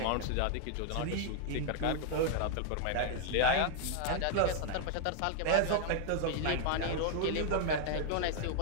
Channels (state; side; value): different; both; correlation 0.00